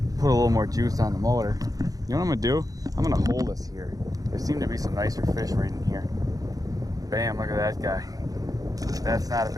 put a little more juice on the motor. You know what I'm gonna do? I'm gonna hold this here. There seem to be some nicer fish right in here. Bam. Look at that guy. That's not a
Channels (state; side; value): late; left; 0.17 ms